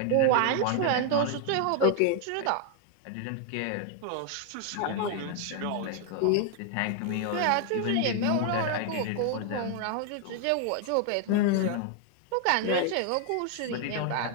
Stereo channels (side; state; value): both; different; correlation 0.00